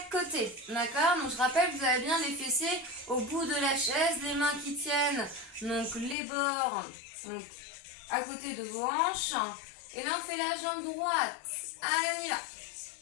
côté. D'accord? Donc je rappelle que vous avez bien les fessiers au bout de la chaise, les mains qui tiennent donc les bords donc, à côté de vos hanches. Et là on fait la jambe droite. Allez, on y va.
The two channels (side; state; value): right; drops out; at 6.2 s